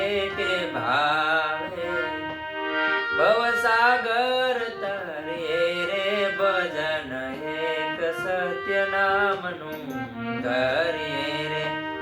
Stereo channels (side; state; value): both; identical; correlation 1.00